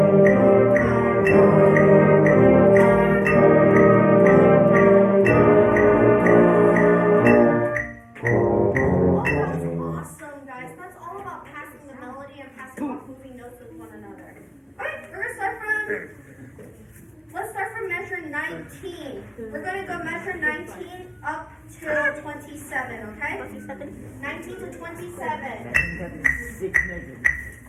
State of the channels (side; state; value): both; identical; correlation 1.00